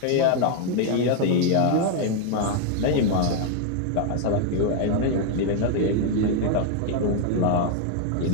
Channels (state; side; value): different; both; correlation 0.00